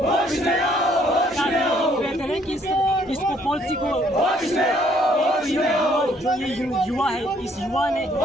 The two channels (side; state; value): both; normal; correlation 0.64